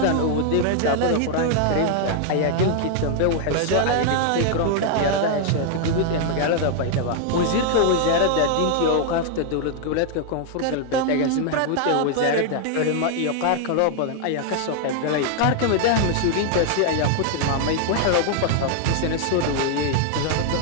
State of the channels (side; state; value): both; different; correlation 0.00